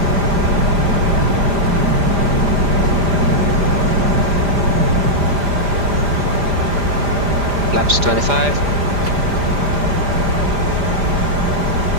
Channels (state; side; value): late; left; 5.0 ms